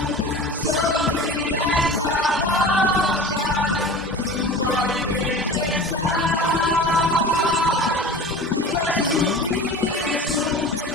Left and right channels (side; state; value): both; normal; correlation 0.36